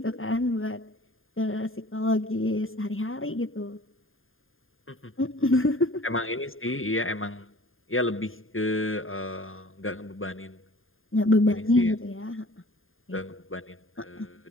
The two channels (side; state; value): right; late; 0.59 ms